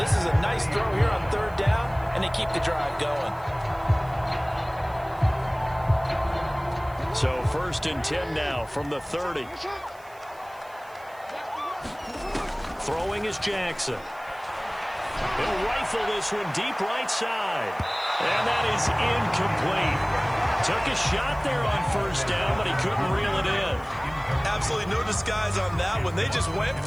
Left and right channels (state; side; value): noise; right; hiss, 26 dB below the sound